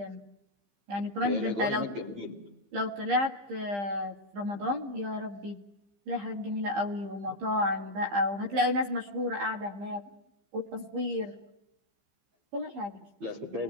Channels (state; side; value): late; left; 15 ms